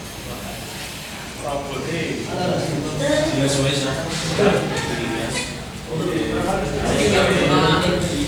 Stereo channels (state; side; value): identical; both; correlation 1.00